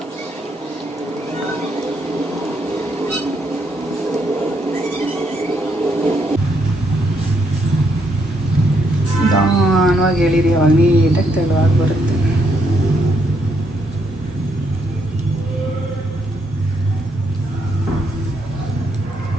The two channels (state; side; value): normal; both; correlation 0.75